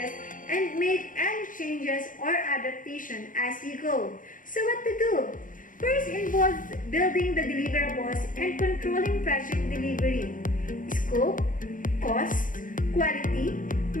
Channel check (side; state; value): right; late; 0.39 ms